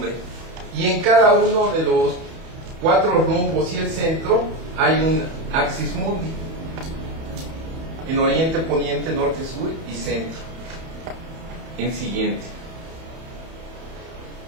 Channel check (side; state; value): left; late; 31 ms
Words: Y en cada uno de los 4 rumbos y el centro hay un Axis Mundi, en oriente, poniente, norte, sur y centro. El siguiente.